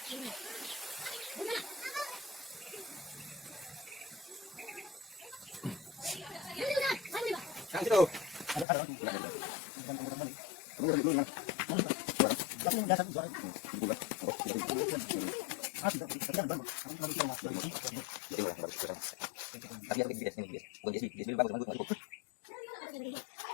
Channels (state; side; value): drops out; right; at 8.7 s